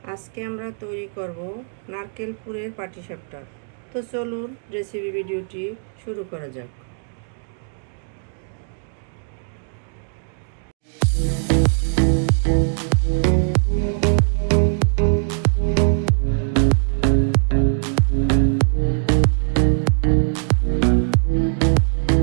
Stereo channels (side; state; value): left; silent; digital silence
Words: আজকে আমরা তৈরি করব নারকেল পুরের পাটিসাপটা। তো চলুন রেসিপি ভিডিওটি শুরু করা যাক।